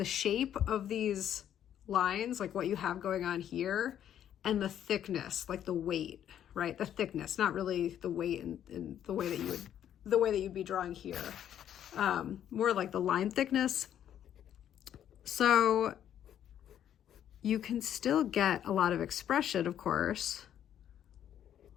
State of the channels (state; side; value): quieter; right; 10.3 dB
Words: shape of these lines, like what you have going on here, and the thickness, like the weight, right? The thickness, not really the weight in the way that you'd be drawing here. More like the line thickness. So you can still get a lot of expression, of course,